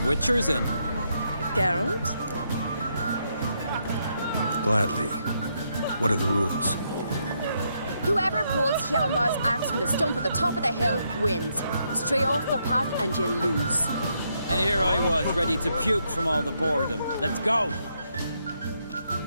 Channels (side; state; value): both; inverted; correlation -0.78